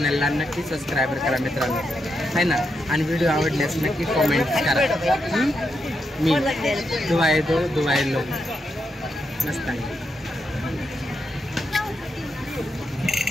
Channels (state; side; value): normal; both; correlation 0.83